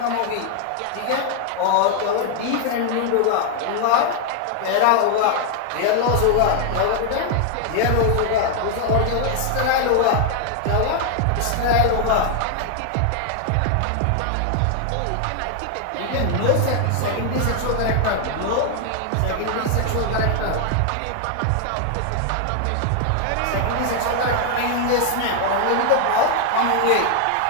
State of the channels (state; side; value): different; both; correlation 0.00